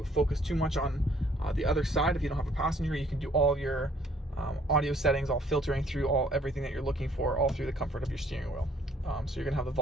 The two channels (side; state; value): both; normal; correlation 0.61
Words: focus too much on the other side. If you don't have a passenger, you can do all of your audio settings, all filtering through everything that you're looking for, all through the comfort of your steering wheel. So you're going to have the